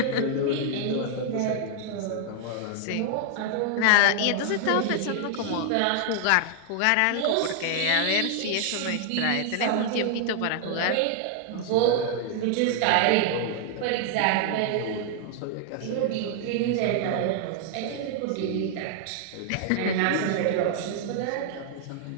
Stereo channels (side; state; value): both; different; correlation 0.00